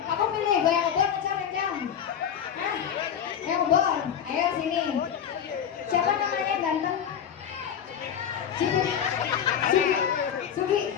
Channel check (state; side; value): quieter; right; 8.6 dB